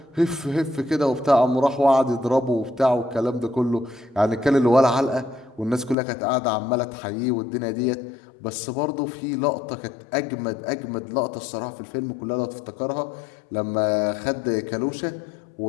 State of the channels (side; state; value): right; drops out; at 6.0 s